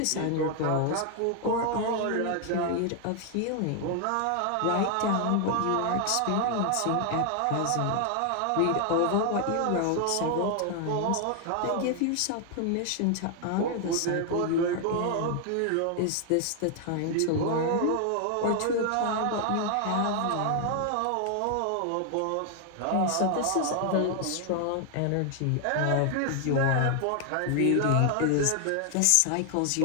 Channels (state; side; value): different; both; correlation 0.00